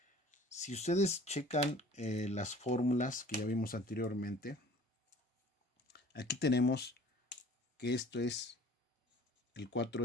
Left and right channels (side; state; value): both; normal; correlation 0.48